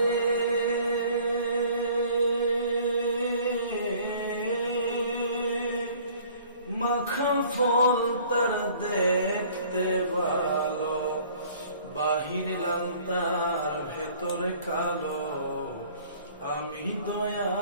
মাখা ফল তার দেখতে ভালো, বাহির লাল তার ভেতরে কালো। আমি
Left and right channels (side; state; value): both; inverted; correlation -0.53